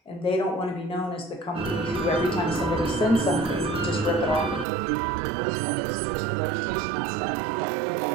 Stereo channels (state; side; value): drops out; left; at 4.7 s